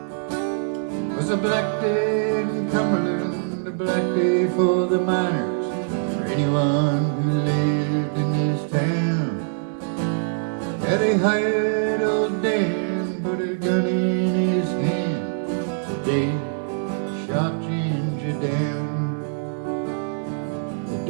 It was a black day in Cumberland, a black day for the miners, for anyone who lived in this town. Had he hired old Dan, put a gun in his hand, the day he shot Ginger down. The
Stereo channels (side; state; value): left; silent; 60 dB below the other